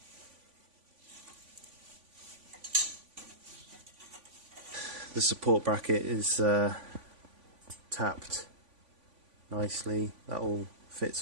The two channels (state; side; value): late; left; 3.5 ms